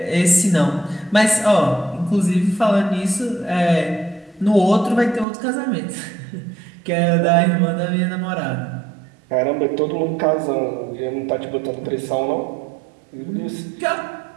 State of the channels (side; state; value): left; drops out; at 5.2 s